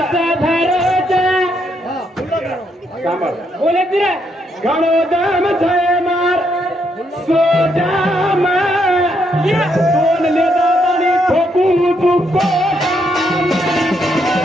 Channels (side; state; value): both; normal; correlation 0.76